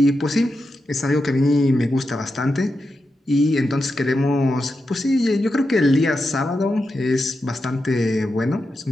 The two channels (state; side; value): normal; both; correlation 0.88